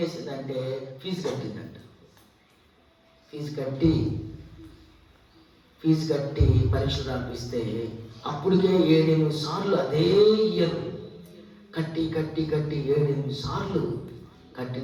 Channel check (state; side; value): identical; both; correlation 1.00